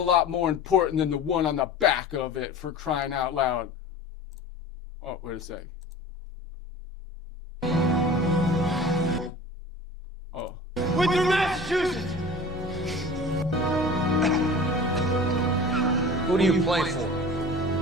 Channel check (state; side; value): normal; both; correlation 0.39